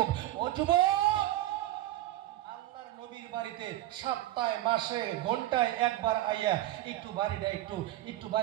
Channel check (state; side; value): quieter; left; 15.4 dB